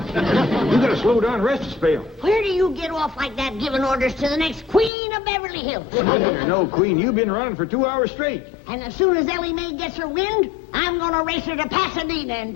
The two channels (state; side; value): drops out; right; at 4.9 s